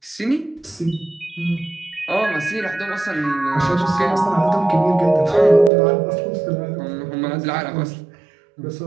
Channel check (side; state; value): left; drops out; at 5.7 s